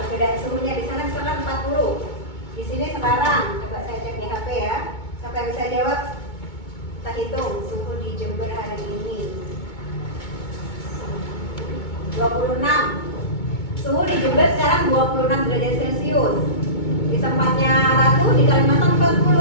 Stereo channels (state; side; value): late; right; 2.2 ms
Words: suhunya di sana misalkan 40. Di sini sekarang coba saya cek di HP ya. Siapa yang bisa jawab? Kita hitung suhu di Jember hari ini. 26. Suhu di Jember sekarang 26 derajat Celcius. Di tempatnya Ratu di Kalimantan